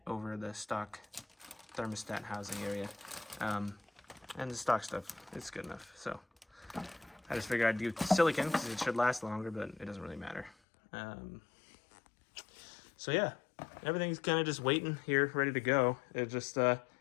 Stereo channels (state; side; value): drops out; right; at 10.6 s